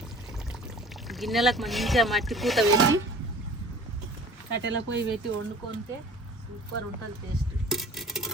గిన్నెలకు మంచిగా మట్టి పూత పెట్టి కట్టెల పొయ్యి పెట్టి వండుకుంటే సూపర్ ఉంటుంది టేస్ట్.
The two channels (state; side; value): normal; both; correlation 0.46